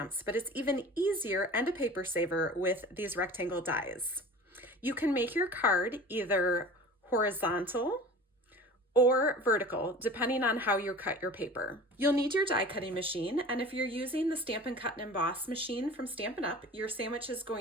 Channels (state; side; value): normal; both; correlation 0.39